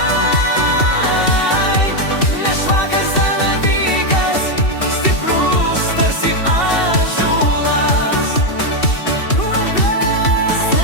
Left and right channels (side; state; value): right; late; 2.7 ms